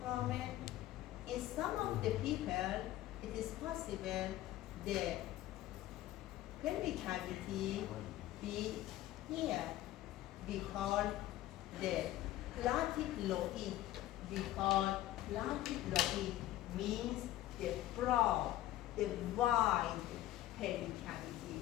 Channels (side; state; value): right; quieter; 14.7 dB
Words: foramen. In some of the people, it is possible the pelvic cavity be here. We call the platyploid. We call platyploid means the broad, the wide pelvic cavity.